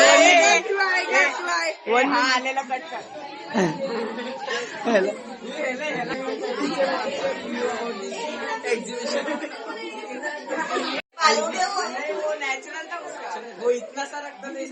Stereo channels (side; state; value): both; identical; correlation 1.00